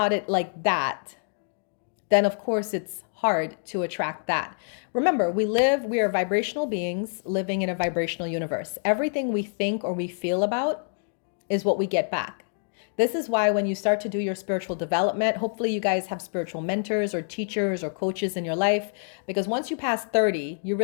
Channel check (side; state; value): right; silent; digital silence